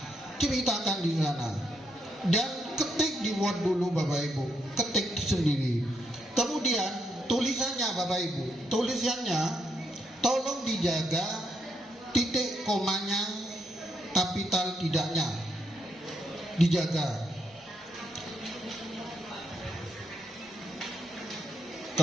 Ceritakan di sana. Dan ketik di Word dulu Bapak Ibu. Ketik sendiri. Kemudian tulisannya Bapak Ibu. Tulisannya tolong dijaga titik komanya, kapital tidaknya dijaga.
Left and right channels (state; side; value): normal; both; correlation 0.78